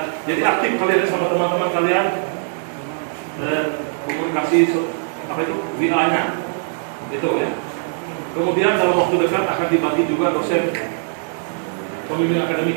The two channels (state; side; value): silent; left; digital silence